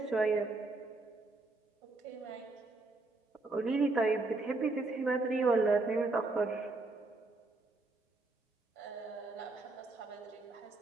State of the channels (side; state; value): left; quieter; 3.3 dB